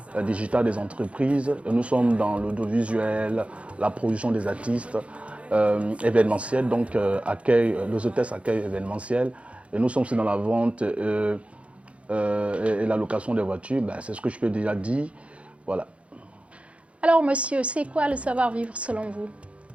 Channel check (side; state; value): left; late; 0.062 ms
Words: digitale des entreprises. Nous sommes dans l'audiovisuel, la production des artistes, événementiel, donc les hôtesses accueil événementiel. Et nous sommes aussi dans la vente et la location des voitures, c'est ce que je peux déjà dire. Voilà. Alors monsieur, c'est quoi le savoir-vivre selon vous?